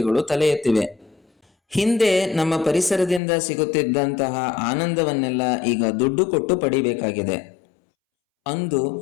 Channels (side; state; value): right; drops out; at 3.2 s